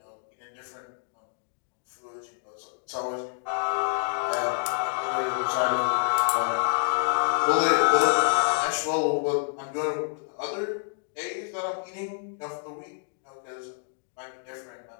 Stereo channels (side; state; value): right; silent; digital silence